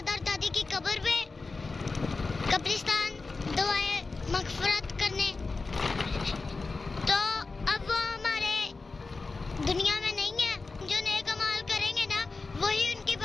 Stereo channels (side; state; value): right; quieter; 3.9 dB